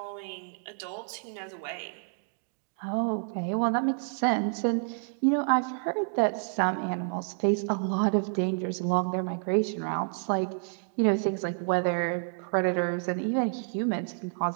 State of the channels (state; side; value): silent; left; digital silence